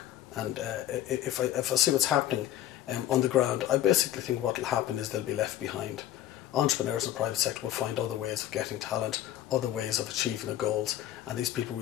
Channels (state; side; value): quieter; right; 12.6 dB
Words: and if I see what's happening on the ground, I basically think what will happen is they'll be left behind. Entrepreneurs in the private sector will find other ways of getting talent, other ways of achieving their goals, and these people will